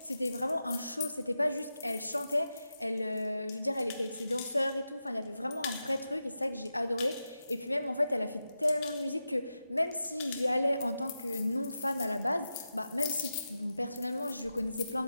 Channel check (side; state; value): both; inverted; correlation -0.90